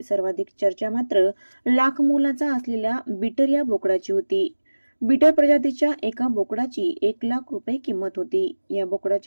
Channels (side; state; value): both; inverted; correlation -1.00